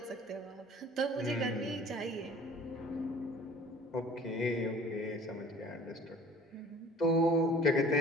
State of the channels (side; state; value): both; normal; correlation 0.48